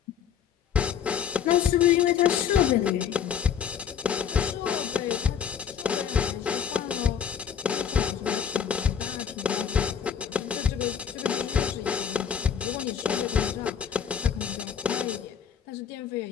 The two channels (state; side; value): quieter; right; 8.0 dB